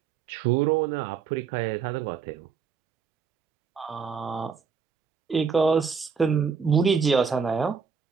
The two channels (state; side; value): quieter; left; 6.0 dB